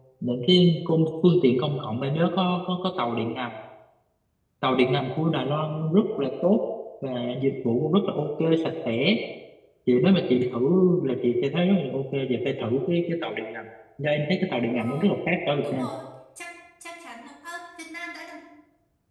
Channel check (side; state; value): both; identical; correlation 1.00